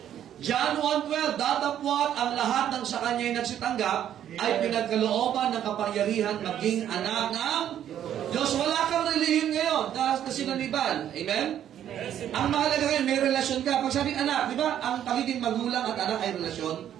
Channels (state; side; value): quieter; left; 10.5 dB